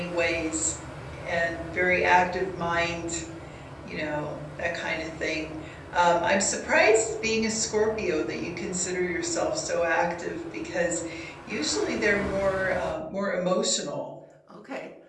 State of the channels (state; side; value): identical; both; correlation 1.00